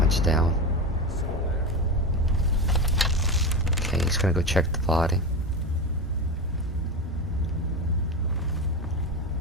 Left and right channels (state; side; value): normal; both; correlation 0.19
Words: down. Okay, he's gonna go check the body.